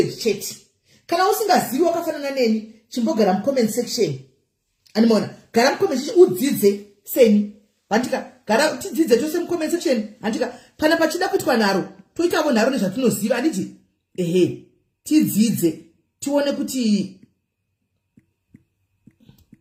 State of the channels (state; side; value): identical; both; correlation 1.00